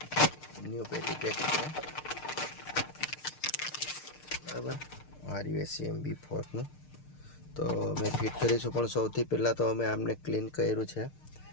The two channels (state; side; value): late; right; 6.6 ms